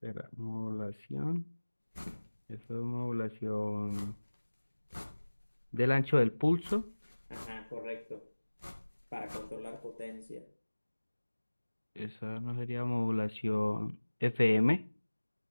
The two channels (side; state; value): both; inverted; correlation -1.00